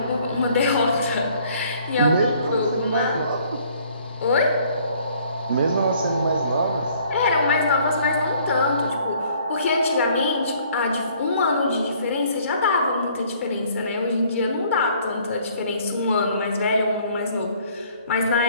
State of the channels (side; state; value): both; inverted; correlation -0.59